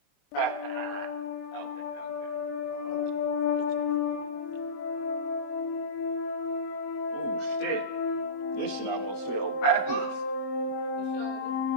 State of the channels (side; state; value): right; late; 21 ms